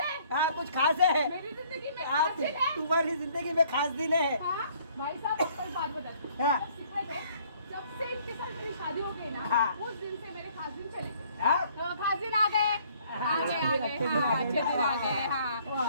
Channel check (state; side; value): inverted; both; correlation -0.61